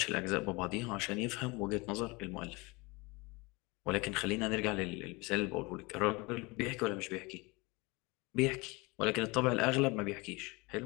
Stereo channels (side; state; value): right; quieter; 25.7 dB